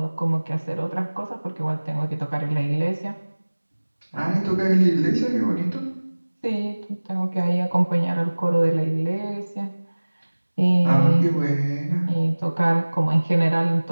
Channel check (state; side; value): inverted; both; correlation -1.00